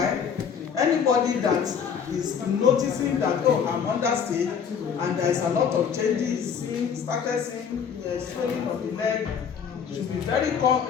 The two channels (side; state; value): right; quieter; 7.2 dB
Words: anybody that is noticing that, oh, I'm understate and there's a lot of changes, started seeing swelling of the leg, should be very